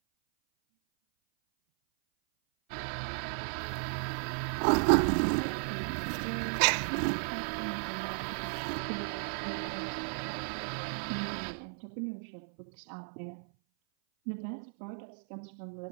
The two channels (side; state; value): left; silent; 55 dB below the other